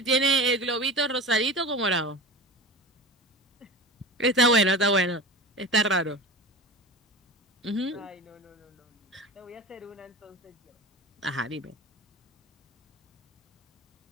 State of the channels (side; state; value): both; normal; correlation 0.31